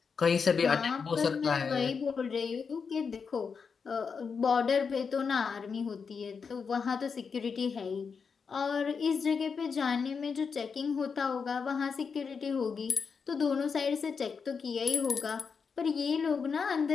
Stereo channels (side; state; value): right; quieter; 5.7 dB